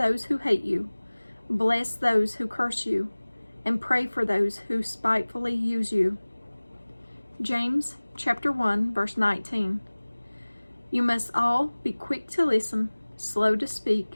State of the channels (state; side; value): inverted; both; correlation -1.00